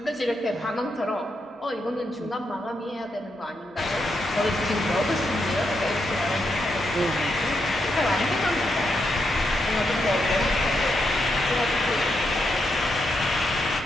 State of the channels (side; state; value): both; normal; correlation 0.82